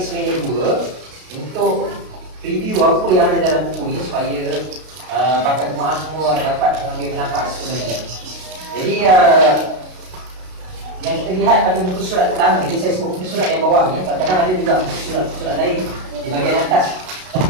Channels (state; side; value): late; left; 32 ms